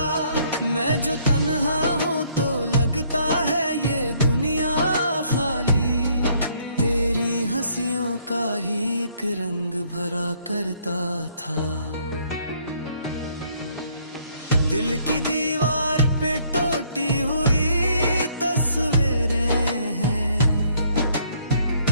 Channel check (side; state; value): both; inverted; correlation -0.65